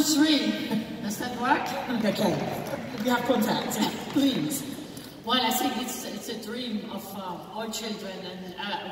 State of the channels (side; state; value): both; identical; correlation 1.00